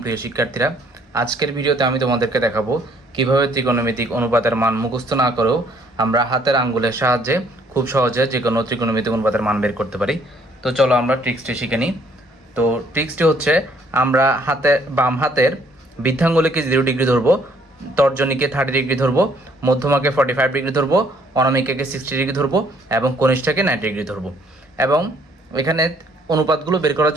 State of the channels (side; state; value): both; normal; correlation 0.64